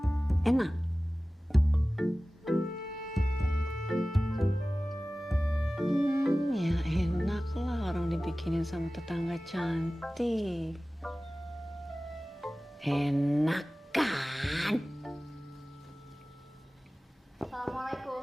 Enak. Ya enak lah orang dibikinin sama tetangga cantik. Enak kan?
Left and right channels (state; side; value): normal; both; correlation 0.97